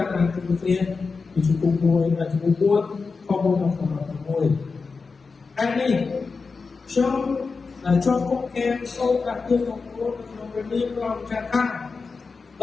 càng thực hiện thì chúng cũng vui là chúng cũng muốn khó bước vào khó vui anh đi cho con em sâu cả tương của cô về liên lòng trả thang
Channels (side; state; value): right; quieter; 4.5 dB